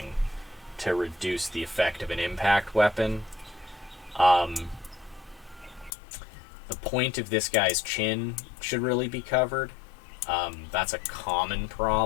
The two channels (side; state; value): right; drops out; at 5.9 s